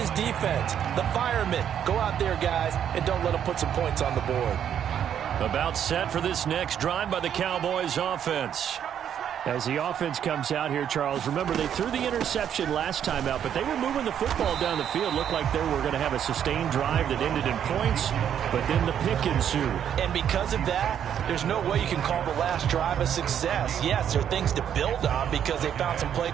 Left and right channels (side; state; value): left; quieter; 9.3 dB